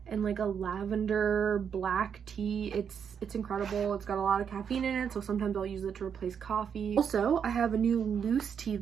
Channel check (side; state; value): left; quieter; 7.4 dB